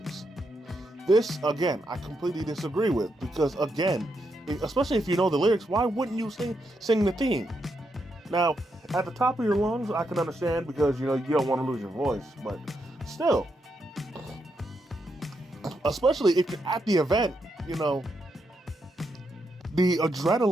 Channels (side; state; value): both; normal; correlation 0.81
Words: This, again, I completely disagree with, because, again, especially if you know the lyrics, why wouldn't you sing the theme? Now, at the top of your lungs, I can understand, because, you don't want to lose your voice, but still, especially if you're at the event, the